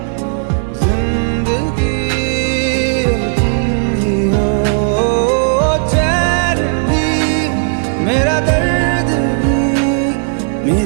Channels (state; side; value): silent; left; 60 dB below the other